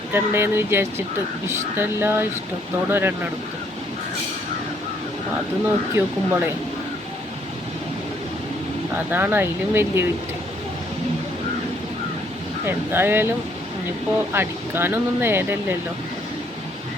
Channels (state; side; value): normal; both; correlation 0.67